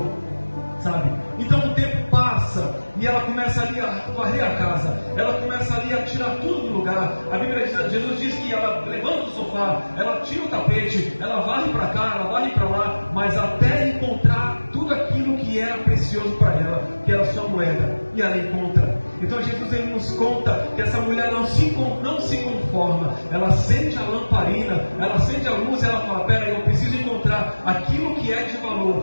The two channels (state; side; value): inverted; both; correlation -1.00